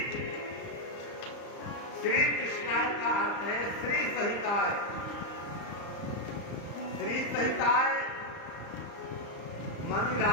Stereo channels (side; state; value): right; late; 34 ms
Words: श्री कृष्णाय का अर्थ है श्री सहिताय। श्री सहिताय मानी